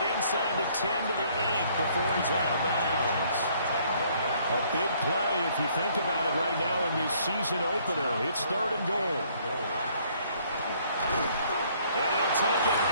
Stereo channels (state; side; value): inverted; both; correlation -0.63